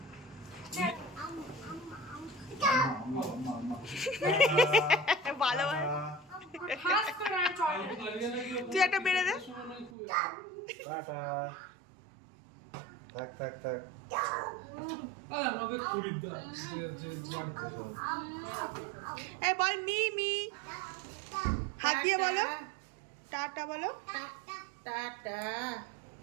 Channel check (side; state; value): left; drops out; at 9.9 s